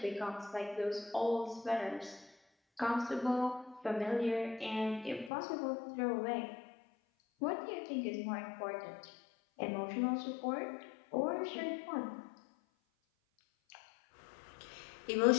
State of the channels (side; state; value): right; drops out; at 5.3 s